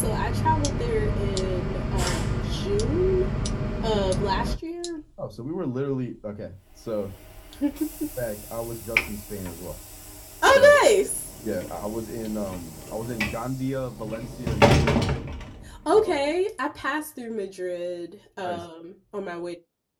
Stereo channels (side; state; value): both; identical; correlation 1.00